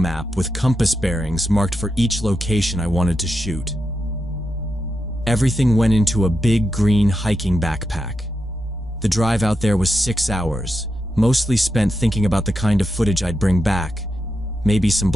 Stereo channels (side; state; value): both; normal; correlation 0.86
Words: with compass bearings marked for each location I wanted to shoot. Everything went into a big green hiking backpack. The drive out there was 6 hours, mostly spent thinking about the kind of footage I'd bring back. Maybe some